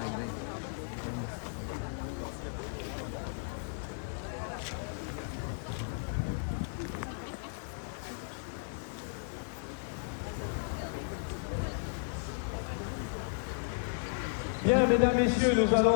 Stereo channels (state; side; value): silent; right; 55 dB below the other